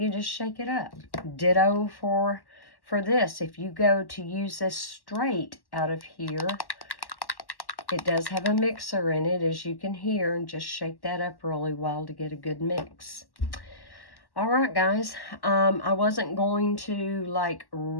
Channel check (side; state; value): right; late; 1.1 ms